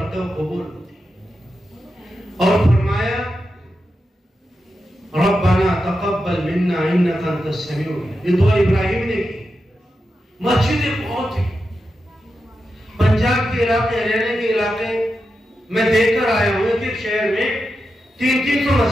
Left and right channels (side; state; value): both; normal; correlation 0.89